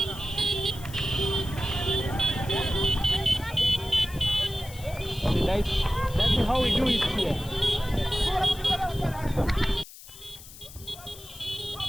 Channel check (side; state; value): left; noise; hiss, 17 dB below the sound